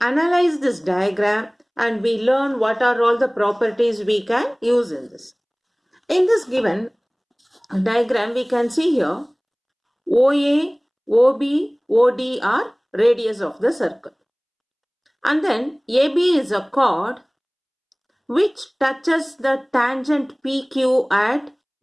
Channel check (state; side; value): identical; both; correlation 1.00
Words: analyze this diagram and we learn what are all the properties we can use in this. In this given diagram, we can see here OA, OB, OD are radius of the circle. And then AB is a chord which touches the tangent PQ at